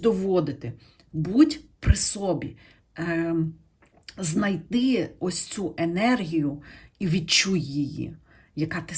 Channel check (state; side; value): identical; both; correlation 1.00